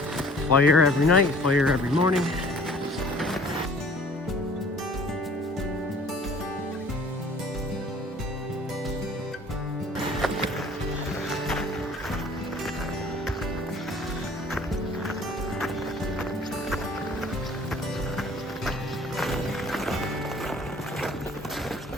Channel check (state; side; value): normal; both; correlation 0.52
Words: Fire every night, fire every morning.